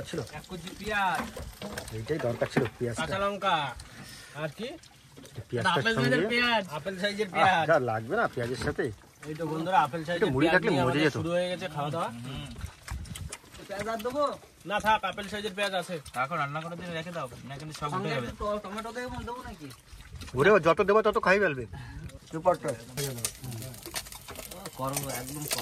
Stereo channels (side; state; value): both; identical; correlation 1.00